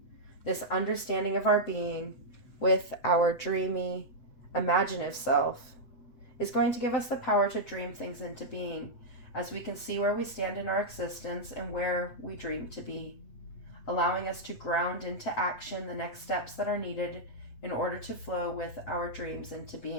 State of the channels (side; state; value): right; late; 8.2 ms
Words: this understanding of our being with our dreamy, imaginative self, is going to give us the power to dream things into being as we can see where we stand in our existence and where we dream to be, allowing us to ground into action the next steps that are needed in order to flow with our dreams into